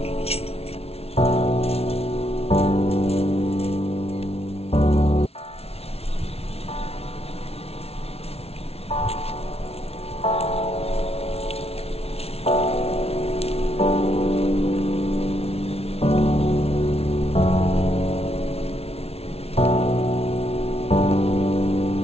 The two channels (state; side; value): late; right; 0.30 ms